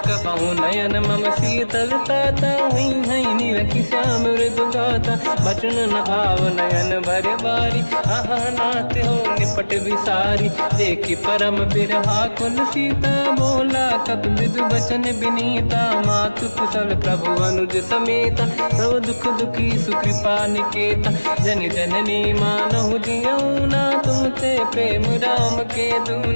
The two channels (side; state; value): both; inverted; correlation -1.00